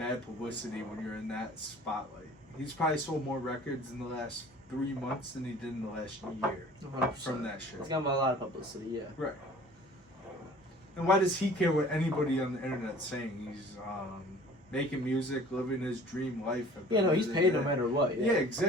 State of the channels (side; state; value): both; normal; correlation 0.48